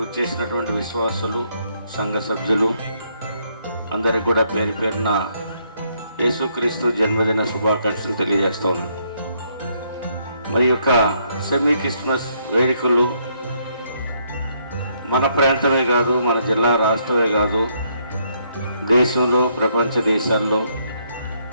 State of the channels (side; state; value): both; inverted; correlation -0.72